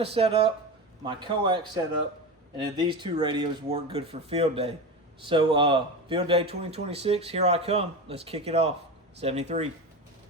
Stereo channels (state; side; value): normal; both; correlation 0.24